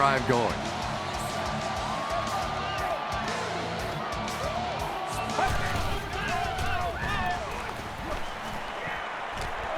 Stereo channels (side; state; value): both; identical; correlation 1.00